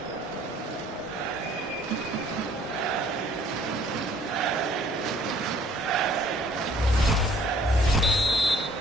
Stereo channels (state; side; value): normal; both; correlation 0.58